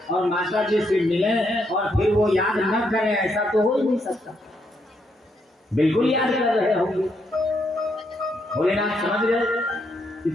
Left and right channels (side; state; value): both; normal; correlation 0.77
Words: और माता जी से मिलें और फिर वो याद न करें, ऐसा तो हो ही नहीं सकता। बिल्कुल याद कर रहे होंगे। भोलेनाथ समझ गए कि